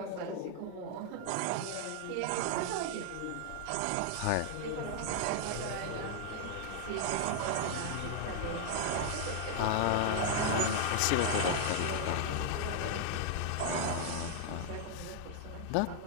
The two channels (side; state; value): both; different; correlation 0.00